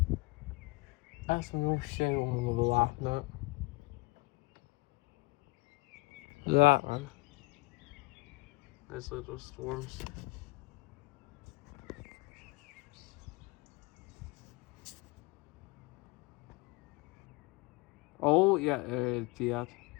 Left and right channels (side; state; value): right; quieter; 24.2 dB